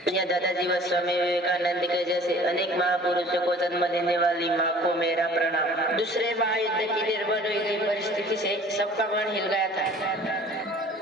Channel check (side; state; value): both; normal; correlation 0.48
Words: या दादाजी व स्वामी विवेकानंद के जैसे अनेक महापुरुषों को जन्म देने वाली माँ को मेरा प्रणाम. दूसरे महायुद्ध की निर्भर हुई गई परिस्थिति से सबका मन हिल गया था.